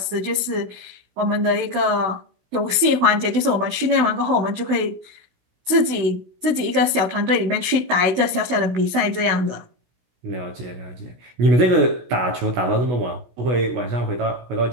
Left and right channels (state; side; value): late; left; 16 ms